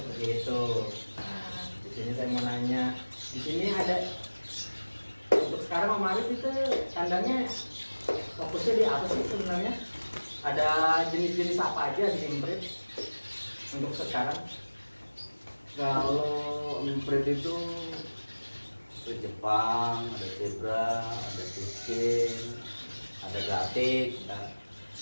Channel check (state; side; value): inverted; both; correlation -1.00